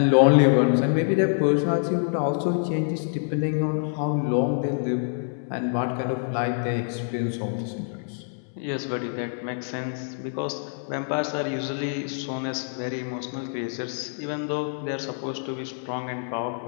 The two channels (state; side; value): silent; right; digital silence